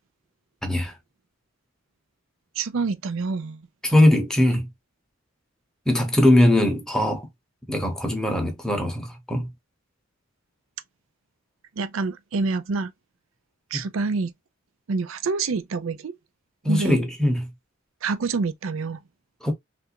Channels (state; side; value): normal; both; correlation 0.81